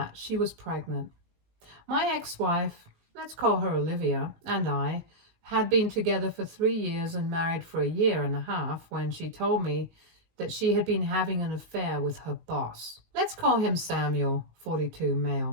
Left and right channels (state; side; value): late; left; 19 ms